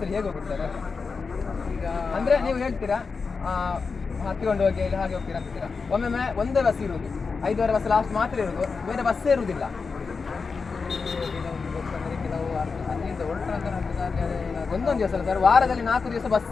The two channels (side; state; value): right; quieter; 4.8 dB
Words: ಹೇಗೆ ಹೋಗ್ತಾರೆ? ಅಂದರೆ ನೀವು ಹೇಳ್ತೀರಾ ಹತ್ತಿಕೊಂಡು ಹೋಗಿ ಇಲ್ಲಿ ಹಾಗೆ ಹೋಗ್ತೀರಾ ಅಂತೀರಾ. ಒಮ್ಮೊಮ್ಮೆ ಒಂದೇ ಬಸ್ ಇರುವುದು, 5 ಬಸ್ ಲಾಸ್ಟ್ ಮಾತ್ರ ಇರುವುದು, ಬೇರೆ ಬಸ್ಸೇ ಇರುವುದಿಲ್ಲ. ಒಂದೊಂದು ದಿವಸ ಅಲ್ಲ ಸರ್, ವಾರದಲ್ಲಿ 4 ದಿವಸ